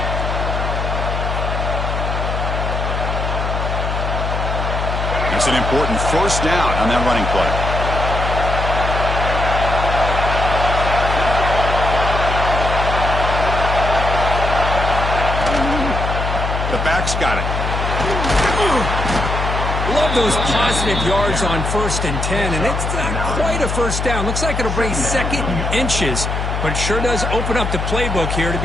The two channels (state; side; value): noise; left; hum, 2 dB below the sound